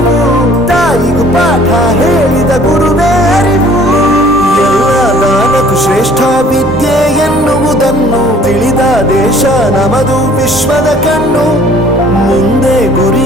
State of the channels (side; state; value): both; normal; correlation 0.55